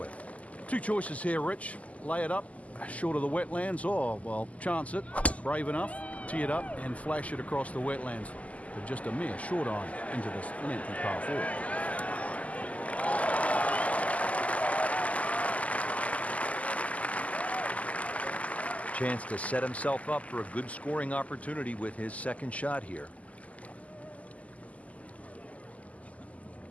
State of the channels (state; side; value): late; right; 0.071 ms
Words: Two choices here, Rich. Lay it up short of the Wetlands, or, well, chance it. Brave enough. Tee it up and flash it across the Wetlands with just a mere short iron into this lengthy par 4. Chance to set himself up for a good scoring opportunity with his second shot here.